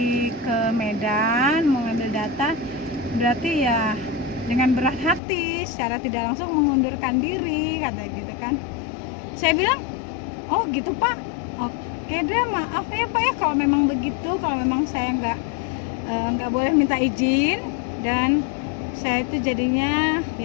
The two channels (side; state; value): right; drops out; at 5.2 s